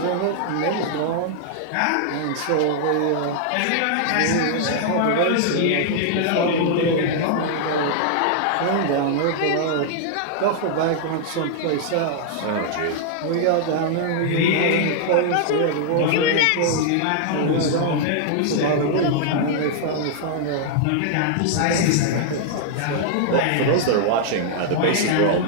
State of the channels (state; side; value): different; both; correlation -0.01